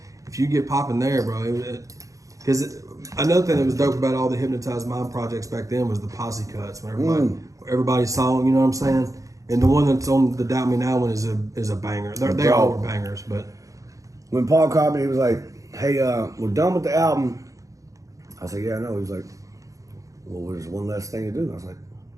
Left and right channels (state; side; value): late; left; 0.16 ms